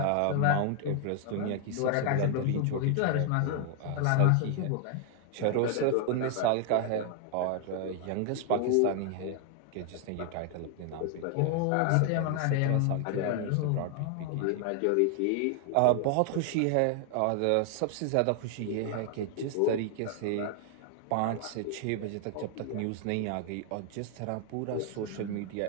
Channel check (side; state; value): both; different; correlation 0.00